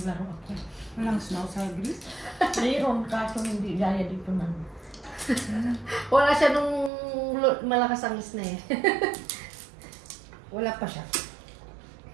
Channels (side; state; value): left; drops out; at 6.9 s